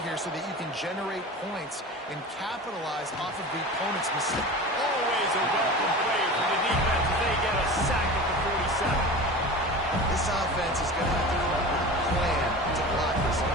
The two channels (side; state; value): both; normal; correlation 0.33